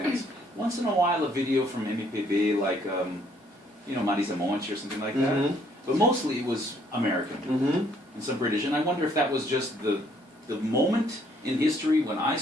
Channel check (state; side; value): normal; both; correlation 0.66